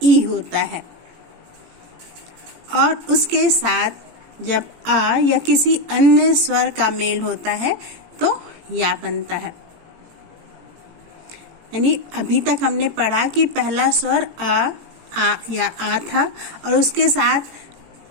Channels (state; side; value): late; left; 18 ms